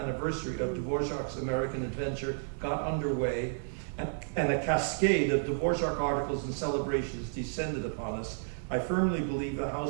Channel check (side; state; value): left; silent; digital silence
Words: of Dvořák's American adventure got underway, and a cascade of Dvořák articles and celebrations descended upon us, I firmly believe the